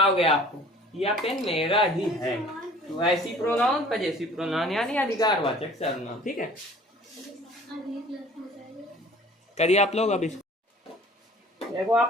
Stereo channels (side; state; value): both; normal; correlation 0.50